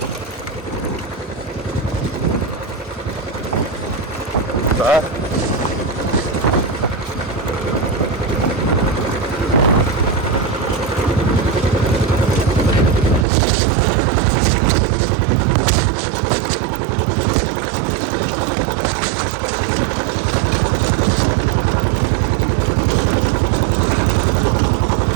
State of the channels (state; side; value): drops out; left; at 13.2 s